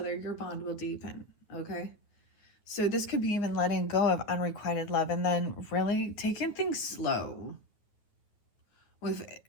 your bond will deepen, okay? So this could be even letting go of unrequited love and then really taking things slow with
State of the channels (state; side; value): late; right; 9.4 ms